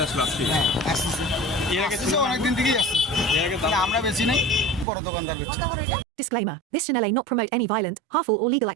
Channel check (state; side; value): drops out; left; at 4.9 s